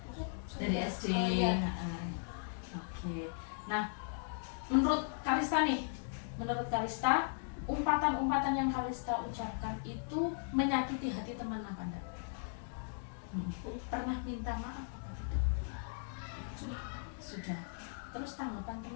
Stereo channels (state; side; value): silent; right; digital silence